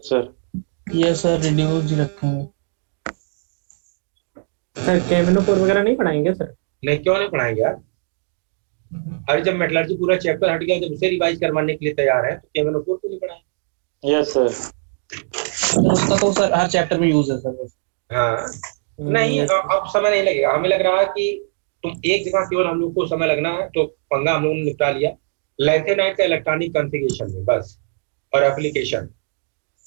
sir. ये सर रिड्यूस ही रखेंगे। सर केमिनो4 वगैरह नहीं पढ़ाएंगे सर? नहीं, क्यों नहीं पढ़ाएंगे यार? अरे जब मेटलर्जी पूरा चैप्टर हट गया, जब उसे रिवाइज करवाने के लिए तैयार है तो केमिनो4 क्यों नहीं पढ़ाएंगे? Yes sir. उसका तो सर हर चैप्टर में यूज है सर। हाँ, नहीं अब समय नहीं लगेगा। हमें लग रहा है कि तुम एक जगह केवल हम लोग को समय लगना है, तो पंगा हम लोगों ने निपटा लिया, लैंथेनाइट का इलेक्ट्रॉनिक कॉन्फ़िगरेशन में बस, और एप्लीकेशन।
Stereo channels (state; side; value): silent; left; digital silence